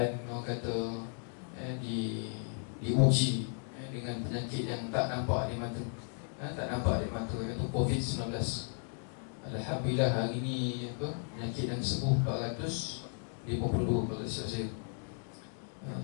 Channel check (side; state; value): right; silent; 54 dB below the other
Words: orang kata diuji dengan penyakit yang tak nampak di mata, iaitu COVID-19. Alhamdulillah hari ini penyakit yang sembuh 452 kalau silap saya.